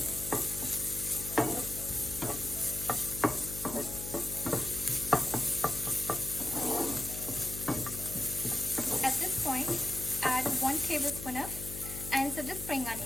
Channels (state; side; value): noise; left; hum, 9 dB below the sound